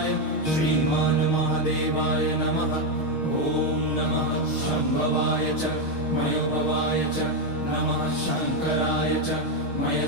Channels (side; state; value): right; late; 6.4 ms